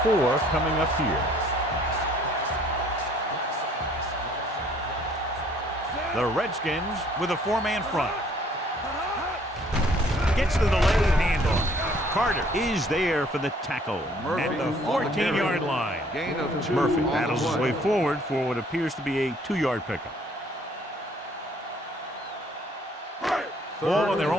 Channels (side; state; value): both; normal; correlation 0.60